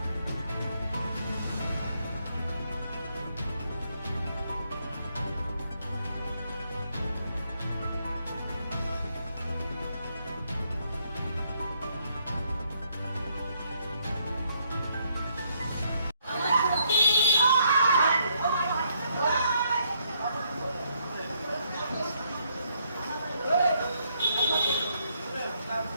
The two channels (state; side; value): inverted; both; correlation -0.72